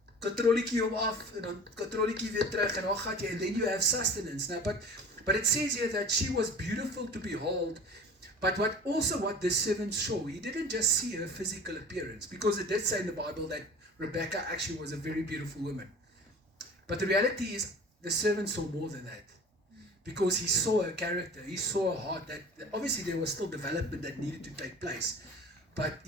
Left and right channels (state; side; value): normal; both; correlation 0.41